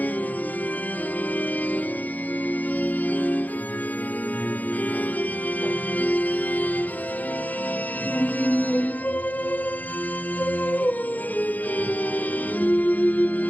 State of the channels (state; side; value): late; right; 0.080 ms